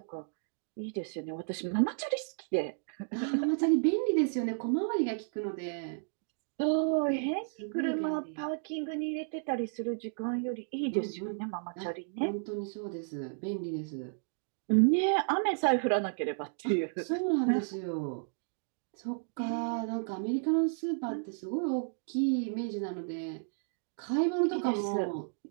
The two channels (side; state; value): left; silent; digital silence